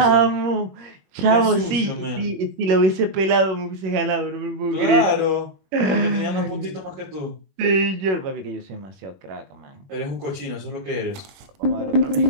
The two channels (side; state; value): left; late; 21 ms